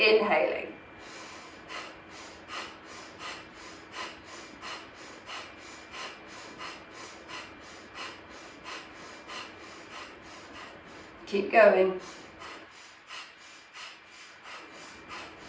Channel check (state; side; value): identical; both; correlation 1.00